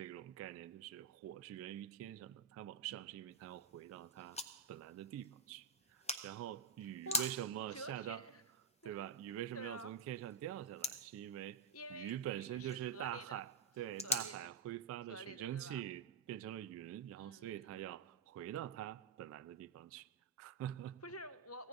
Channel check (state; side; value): quieter; left; 4.7 dB